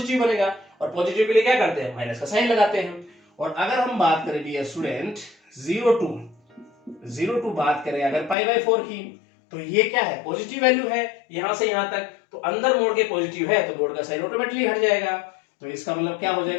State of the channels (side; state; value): right; drops out; at 8.3 s